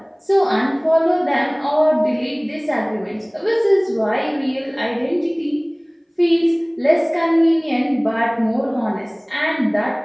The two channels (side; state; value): both; identical; correlation 1.00